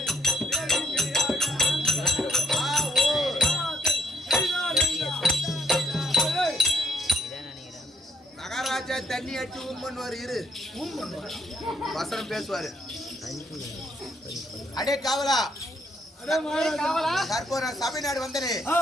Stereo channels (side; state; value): both; normal; correlation 0.69